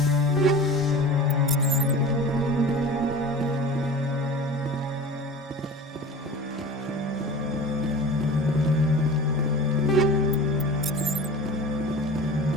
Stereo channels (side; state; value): both; normal; correlation 0.36